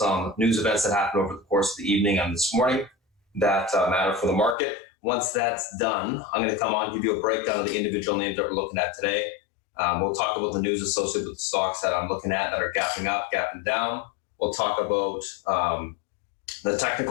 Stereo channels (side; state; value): right; drops out; at 4.5 s